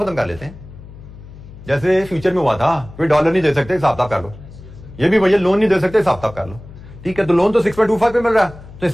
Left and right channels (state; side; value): noise; left; hum, 17 dB below the sound